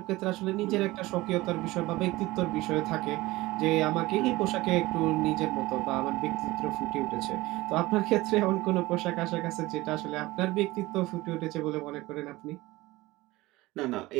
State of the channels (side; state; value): left; quieter; 19.6 dB